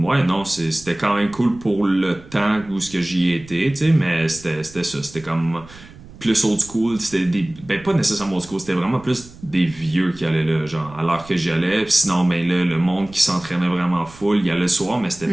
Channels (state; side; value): noise; right; rumble, 20 dB below the sound